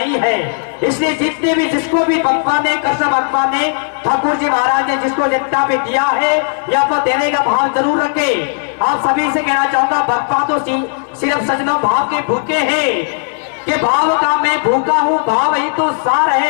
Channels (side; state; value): right; silent; digital silence